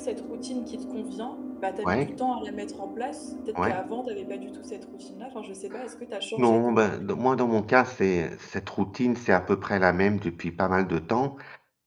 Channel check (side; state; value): both; identical; correlation 1.00